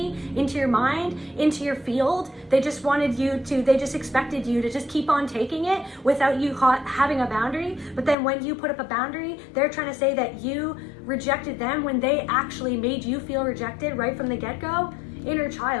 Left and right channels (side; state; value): right; drops out; at 8.2 s